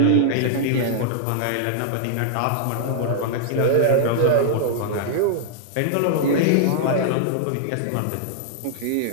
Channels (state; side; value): different; both; correlation -0.01